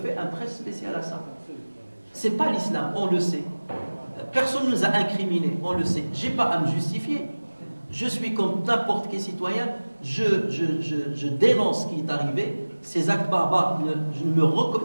un prêche spécial à ça? C'est pas l'islam, on le sait. Personne ne nous a incriminés, on le sait. J'ai pas à me justifier. Je suis comme n'importe quel citoyen, je dénonce ce qui est arrivé. Ces actes barbares, je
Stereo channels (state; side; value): inverted; both; correlation -1.00